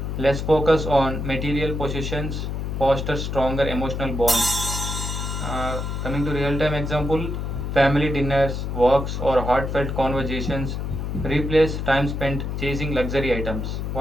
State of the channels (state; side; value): noise; left; hum, 3 dB below the sound